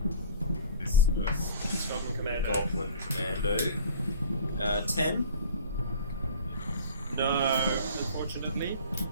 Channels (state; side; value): inverted; both; correlation -0.43